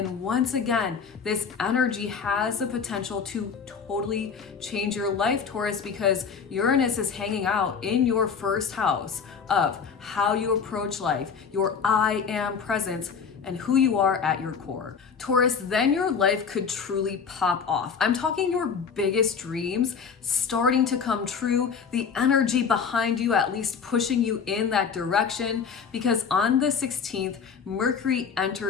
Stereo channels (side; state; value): right; quieter; 6.2 dB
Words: once again, this energy has the potential to totally change your life, Taurus, because Uranus is hanging out in your 1st house of how you approach life, your I am presence, and who you are at your core. Taurus, then your life could truly pop off. I'm talking your biggest dreams starting to come true, the energy behind you at least pushing you in that direction, because on the 16th, Mercury